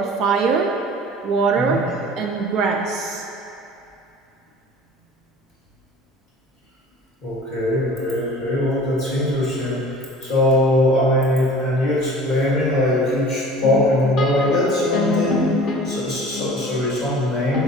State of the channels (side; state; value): both; normal; correlation 0.44